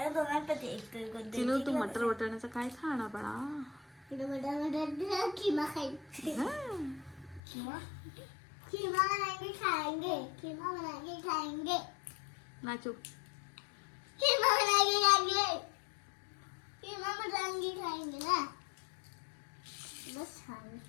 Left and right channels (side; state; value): right; drops out; at 7.4 s